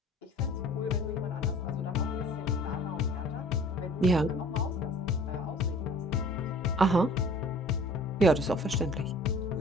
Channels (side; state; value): both; normal; correlation 0.49